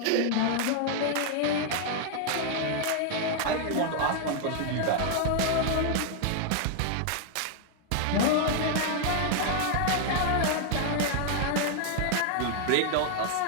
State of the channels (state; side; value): different; both; correlation 0.00